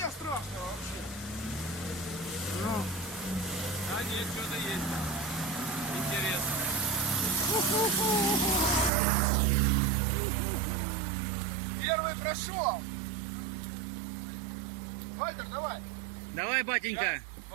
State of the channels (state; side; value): drops out; left; at 8.9 s